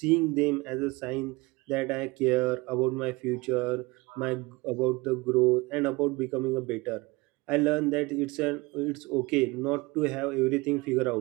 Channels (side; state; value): left; quieter; 24.0 dB